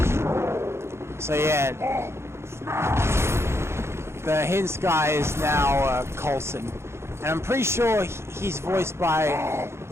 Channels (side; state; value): left; late; 0.13 ms